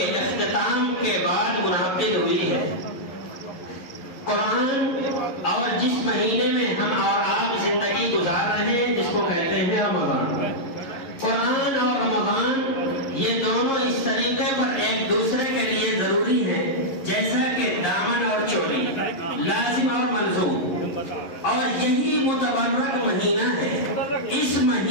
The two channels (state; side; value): late; right; 11 ms